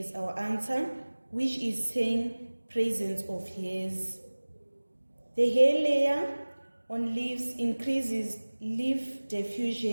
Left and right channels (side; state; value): both; inverted; correlation -1.00